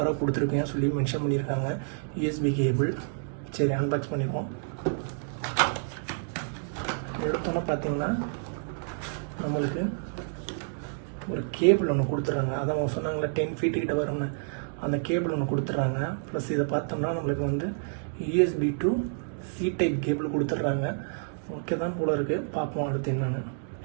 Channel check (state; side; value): silent; left; digital silence